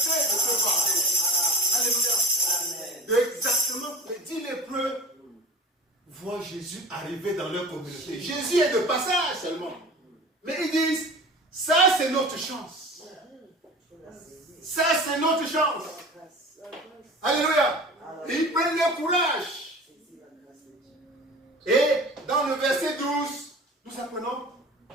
de ce fardeau. Alléluia. Amen. Exactement. Les 10 lépreux voient Jésus arriver dans leur communauté. Jésus est de passage seulement. Mais ils disent, ça c'est notre chance. Ça c'est notre chance. Alléluia. Et ils prennent leur courage. Et dans le verset 12, nous apprenons,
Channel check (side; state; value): both; normal; correlation 0.38